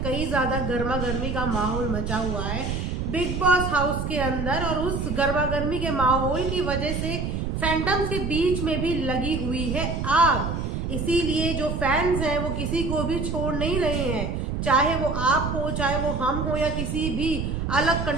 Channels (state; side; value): noise; right; rumble, 2 dB below the sound